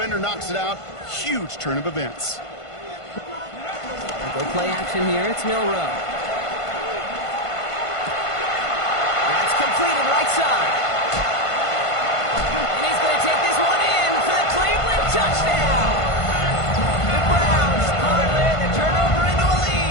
knocks it out. Huge turn of events. Go play action here, it's Milrow. That's completed right side. And he's going to take this one in for the Cleveland touchdown. The Browns parlay the turnover into a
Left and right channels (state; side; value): late; right; 1.5 ms